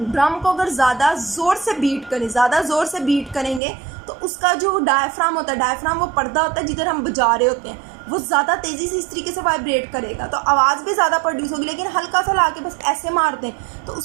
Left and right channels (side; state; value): left; drops out; at 3.6 s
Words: ड्रम को अगर ज़्यादा ज़ोर से बीट करें, ज़्यादा ज़ोर से बीट करेंगे तो उसका जो डायफ्राम होता है, डायफ्राम वो पर्दा होता है जिधर हम बजा रहे होते हैं, वो ज़्यादा तेज़ी से इस तरीके से वाइब्रेट करेगा तो आवाज़ भी ज़्यादा प्रोड्यूस होगी। लेकिन हल्का सा ला के बस ऐसे मार दें तो